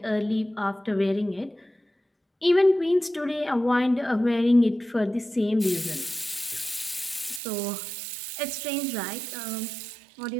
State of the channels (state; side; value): drops out; left; at 7.4 s